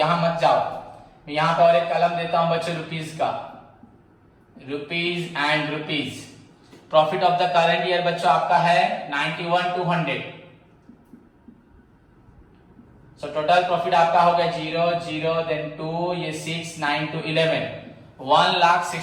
मत जाओ। मैं यहां पर और एक कलम देता हूं बच्चों रुपीज का, rupees and rupees. Profit of the current year बच्चों आपका है 91,200। सो टोटल प्रॉफिट आपका हो गया 0 0 देन 2 ये 6 9 2 11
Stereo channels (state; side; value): identical; both; correlation 1.00